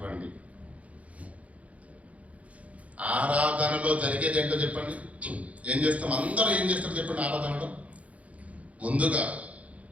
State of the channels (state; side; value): late; left; 0.066 ms